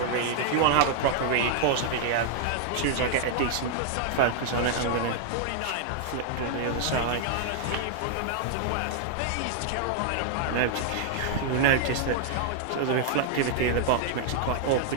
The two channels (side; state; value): both; different; correlation 0.00